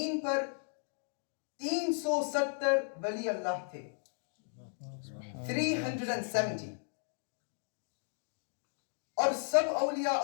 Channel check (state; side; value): silent; right; digital silence